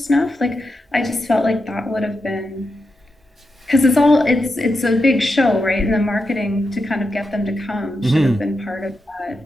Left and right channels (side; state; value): both; normal; correlation 0.87